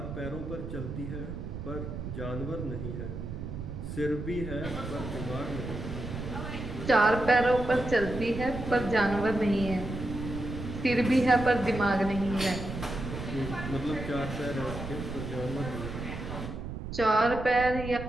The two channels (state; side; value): noise; right; rumble, 7 dB below the sound